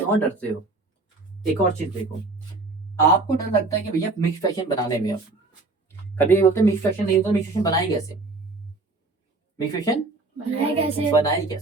डरते हो? एक और चीज देखो, आपको डर लगता है कि भैया मिक्स्ड फ्रैक्शन बनाने में, आप कभी बोलते मिक्स्ड फ्रैक्शन नहीं होता, मिक्स्ड फ्रैक्शन बनाई कैसे? मिक्स्ड फ्रैक्शन बनाए कैसे? बनाई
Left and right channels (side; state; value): left; quieter; 3.4 dB